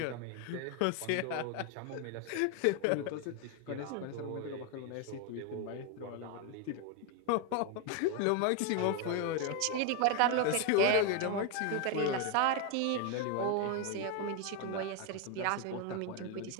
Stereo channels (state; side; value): different; both; correlation 0.01